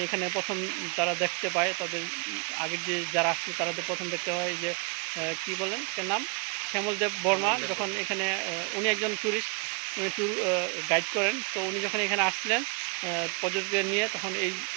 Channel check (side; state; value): left; quieter; 33.2 dB